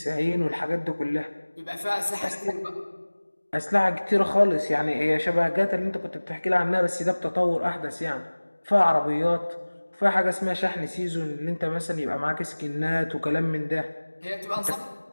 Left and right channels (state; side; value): inverted; both; correlation -1.00